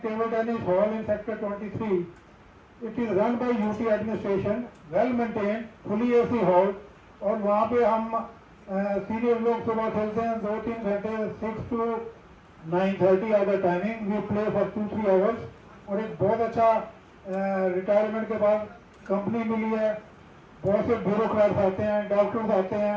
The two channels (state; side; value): identical; both; correlation 1.00